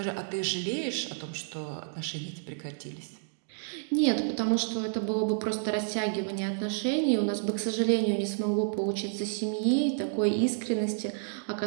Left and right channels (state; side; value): silent; left; digital silence